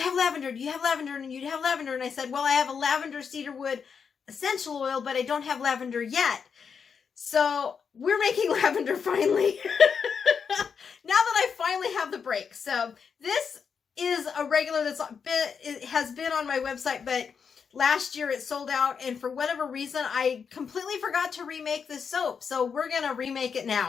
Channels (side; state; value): right; quieter; 6.3 dB